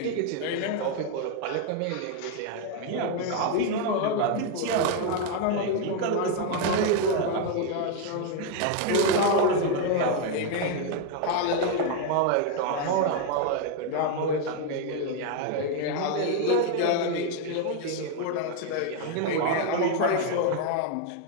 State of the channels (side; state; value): both; different; correlation 0.01